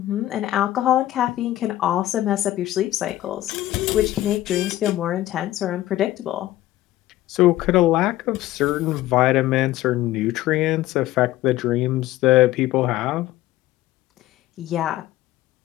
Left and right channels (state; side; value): quieter; right; 15.2 dB